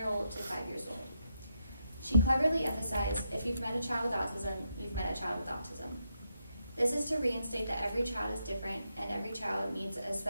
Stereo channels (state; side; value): inverted; both; correlation -0.82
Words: to 5 years old. She cleverly emphasized, if you've met a child with autism, you've met a child with autism. This is to reinstate that every child is different and every child needs a